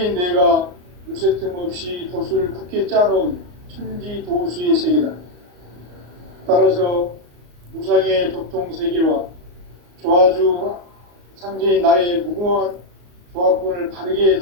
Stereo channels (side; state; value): left; late; 34 ms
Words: 내가 무쇠 틈 없이 도수를 굳게 짜놓은 천지도수의 세계다. 따라서 무상의 도통세계와 조화주 상제인 나의 무궁한 조화권을 바르게